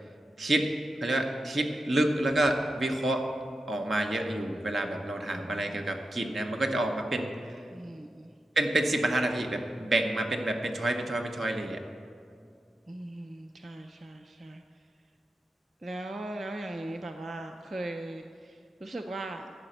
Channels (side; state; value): both; normal; correlation 0.89